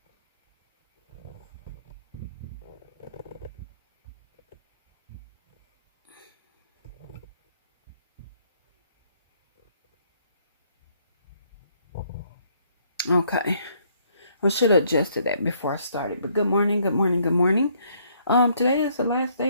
Okay, I should have adjusted that before I started. But good morning, good morning, good morning. Today is the last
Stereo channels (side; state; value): both; inverted; correlation -0.67